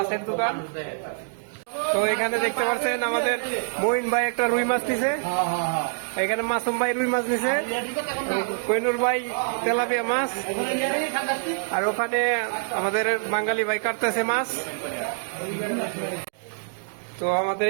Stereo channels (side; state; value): left; silent; digital silence